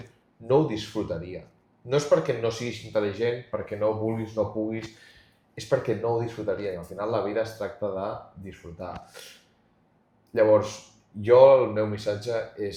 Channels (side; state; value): both; identical; correlation 1.00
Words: no ho disfrutaria. No és perquè no siguis intel·ligent, perquè no vulguis, no puguis, és perquè no ho disfrutaria. I al final la vida es tracta de disfrutar. Llavors, el meu missatge